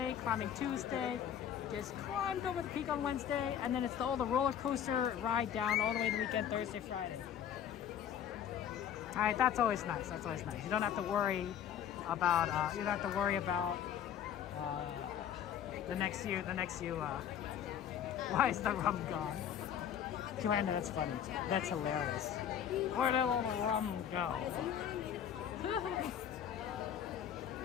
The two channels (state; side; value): quieter; right; 9.3 dB